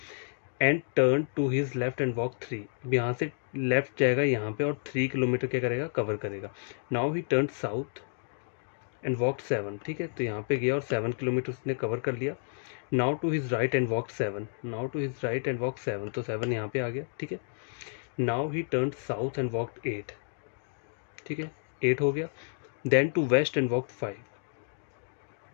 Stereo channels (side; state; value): right; silent; digital silence